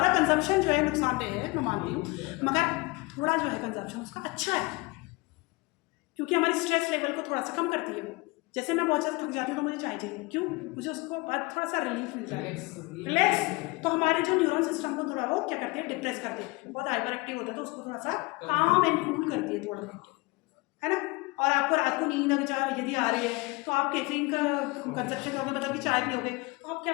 कंजम्पशन जो है नुकसानदेह है, मैं मानती हूँ, मगर थोड़ा जो है कंजम्पशन उसका अच्छा है, क्योंकि हमारी स्ट्रेस लेवल को थोड़ा सा कम करती है वो। जैसे मैं बहुत ज़्यादा थक जाती हूँ तो मुझे चाय चाहिए, क्यों? मुझे उसको बाद थोड़ा सा रिलीफ मिलता है, रिलैक्स। तो हमारे जो न्यूरल सिस्टम को थोड़ा वो क्या करती है? डिप्रेस करती है। बहुत हाइपर एक्टिव होता है तो उसको थोड़ा सा काम एंड कूल करती है थोड़ा, है ना। और आपको रात को नींद अगर यदि आ रही है तो आप कैफीन का कंजप्शन करोगे, मतलब कि चाय पियोगे, तो आप क्या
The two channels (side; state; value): right; quieter; 24.5 dB